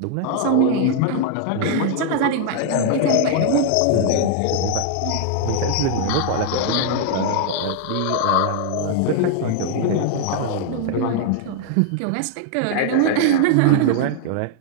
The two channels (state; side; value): different; both; correlation 0.00